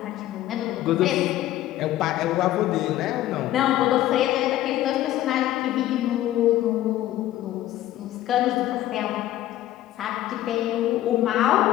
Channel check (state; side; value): quieter; right; 14.0 dB